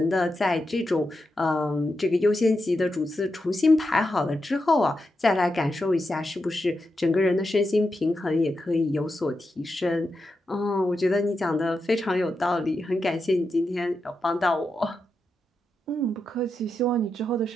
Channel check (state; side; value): normal; both; correlation 0.87